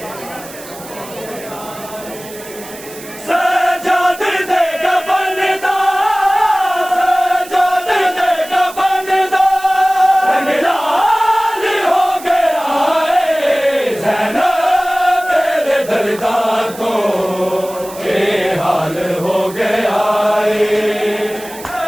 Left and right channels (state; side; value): noise; right; hiss, 16 dB below the sound